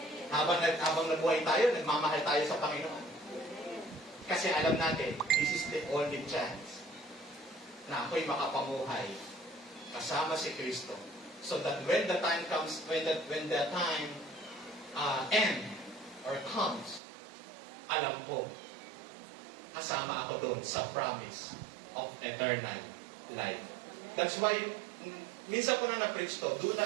Habang nabuhay tayo, nagmamahal tayo sa Panginoon. Kasi alam natin, this is the only chance na ako'y makapamuhay kasama si Kristo. So that when the time comes, when the time end or comes, alam ko, kasama ako doon sa promise of eternal life. That's why, minsan ko na na-preach to, do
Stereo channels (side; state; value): left; drops out; at 17.0 s